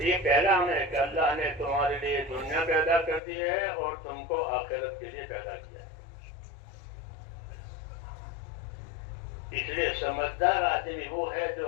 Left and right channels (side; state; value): right; drops out; at 3.2 s